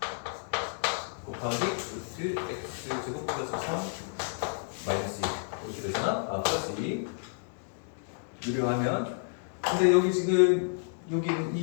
곱하기 루트 x 제곱 플러스 3 마이너스 2 이렇게 되잖아? 플러스 2 유리화하면 근데 여기 지금 여기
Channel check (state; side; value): silent; right; digital silence